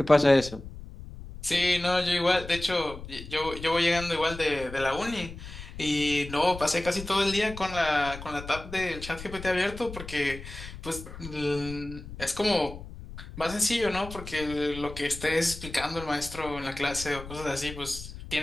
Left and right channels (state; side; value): noise; left; rumble, 13 dB below the sound